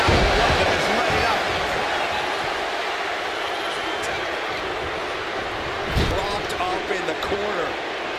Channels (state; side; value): identical; both; correlation 1.00